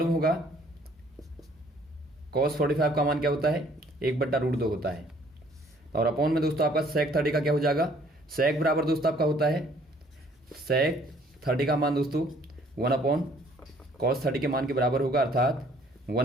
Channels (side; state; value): both; normal; correlation 0.60